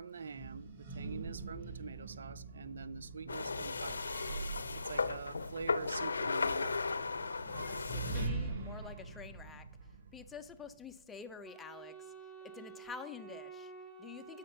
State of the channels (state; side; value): inverted; both; correlation -0.74